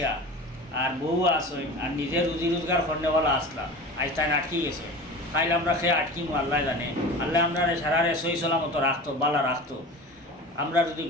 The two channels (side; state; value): both; normal; correlation 0.34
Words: আর বউ আসেন, আর নিজের রুজি রোজগার করনেওয়ালা আসলাম, আজ তাই আটকি গেছে। খাইলে আমরা খেয়ে আটকিমু আল্লাহ জানে। আল্লাহ আমরা সারারে সই সলামতো রাখতো, বালা রাখতো। আমরা যদি